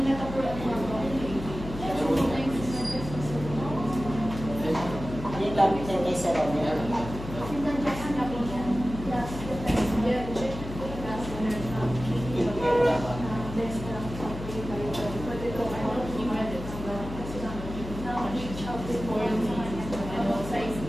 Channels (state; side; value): noise; left; hum, 10 dB below the sound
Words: nakapulat mo ako. Yung gamit niya kay Sir Romero.